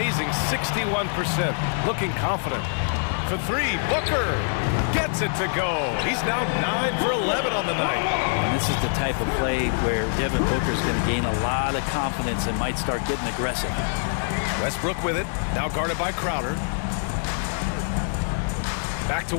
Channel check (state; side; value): silent; right; 62 dB below the other